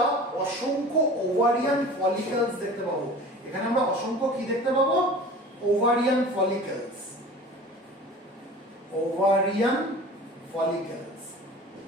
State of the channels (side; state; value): both; normal; correlation 0.40